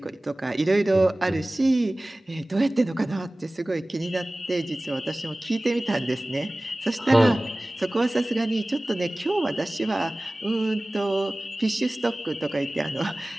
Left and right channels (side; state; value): both; normal; correlation 0.98